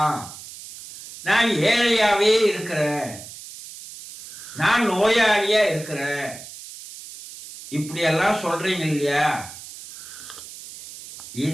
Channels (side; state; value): right; noise; hiss, 14 dB below the sound